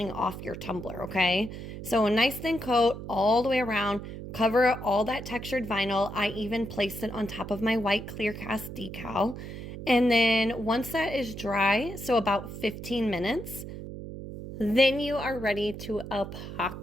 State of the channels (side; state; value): right; noise; hum, 10 dB below the sound